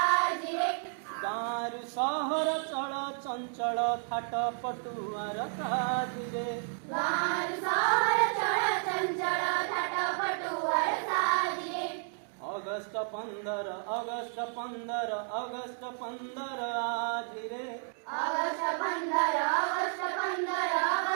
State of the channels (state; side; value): silent; left; 57 dB below the other